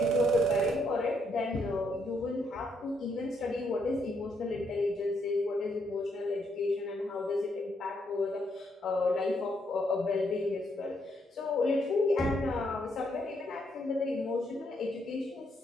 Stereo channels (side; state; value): both; normal; correlation 0.75